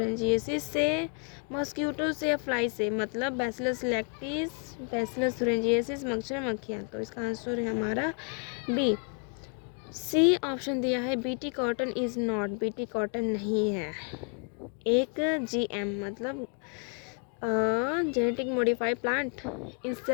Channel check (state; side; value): quieter; right; 38.8 dB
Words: से, मॉस्किटो से या फ्लाई से। मतलब बैसिलस लैक्टिस, बैसिलस थुरिंजिएसिस, मच्छर, मक्खियाँ। तो इसका आंसर है हमारा बी। सी ऑप्शन दिया है BT cotton is not. BT cotton नहीं है। एक जीएम मतलब genetic modified plant,